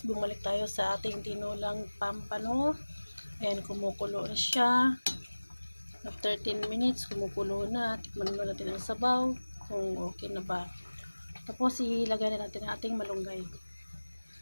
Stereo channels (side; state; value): both; inverted; correlation -1.00